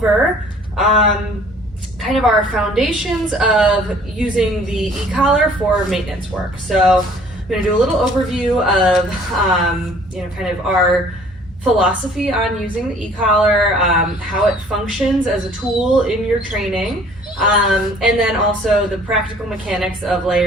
kind of our foundations of using the e-collar for maintenance work. So I'm going to do a little overview of kind of our philosophy on using the e-collar, how it functions as a tool in your training, and then also the practical mechanics of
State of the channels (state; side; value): normal; both; correlation 0.54